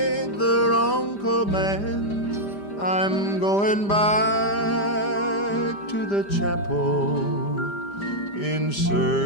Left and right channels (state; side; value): late; right; 5.0 ms